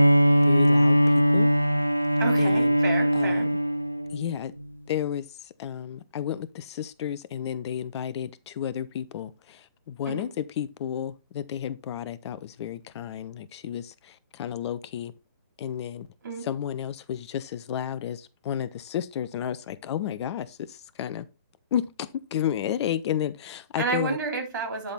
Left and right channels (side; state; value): both; inverted; correlation -0.80